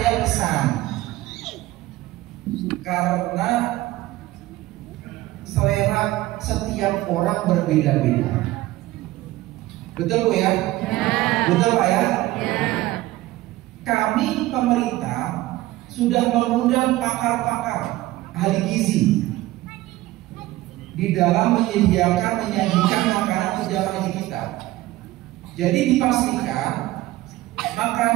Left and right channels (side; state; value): left; quieter; 17.1 dB